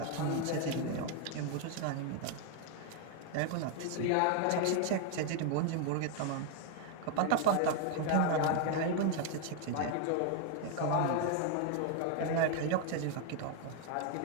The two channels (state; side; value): different; both; correlation 0.01